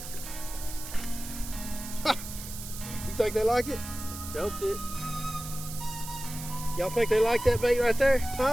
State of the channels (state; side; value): noise; right; hiss, 10 dB below the sound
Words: You think they like it? Choked it. Y'all think they like that bait right there?